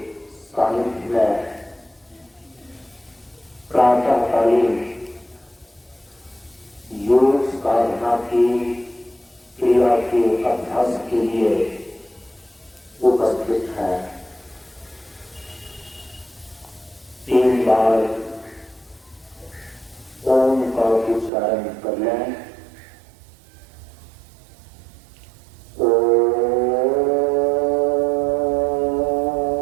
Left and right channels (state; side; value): drops out; left; at 21.3 s